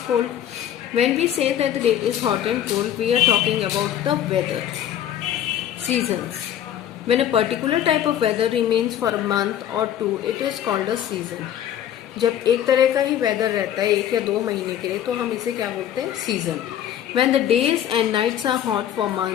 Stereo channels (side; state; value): right; quieter; 10.7 dB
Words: cold. When we say that the day is hot and cold, we are talking about the weather. Seasons. When a particular type of weather remains for a month or two, it is called a season. जब एक तरह का ही वेदर रहता है 1 या 2 महीने के लिए तो हम इसे क्या बोलते हैं? Season. When the days and nights are hot for